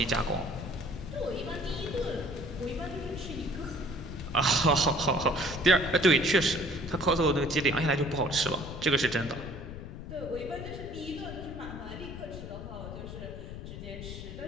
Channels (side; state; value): left; noise; rumble, 9 dB below the sound